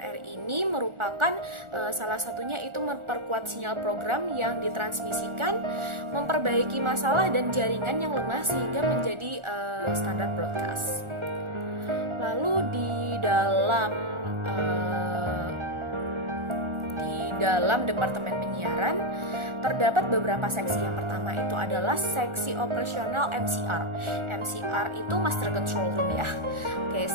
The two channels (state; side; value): late; left; 1.4 ms